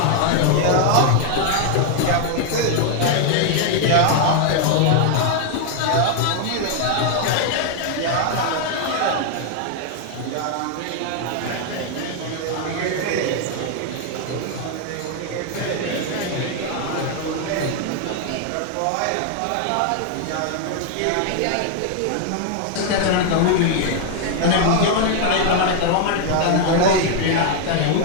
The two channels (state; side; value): different; both; correlation 0.00